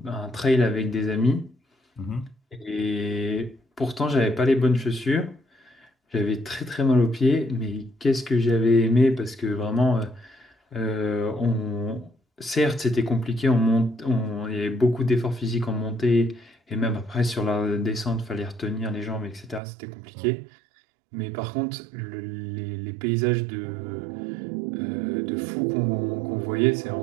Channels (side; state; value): left; drops out; at 19.6 s